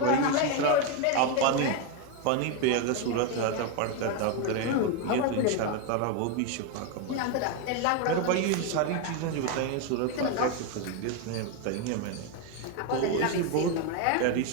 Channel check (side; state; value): both; different; correlation 0.02